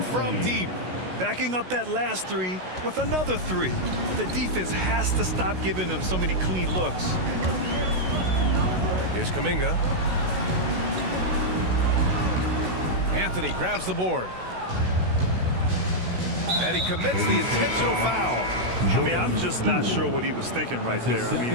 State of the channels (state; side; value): late; left; 16 ms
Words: from deep. Backing up that last three with another three. The defense has to stop giving them so many clean looks. Here's Kuminga. Anthony grabs the board. And he commits the intentional foul. I mean, I'm just not sure what he was thinking right there. I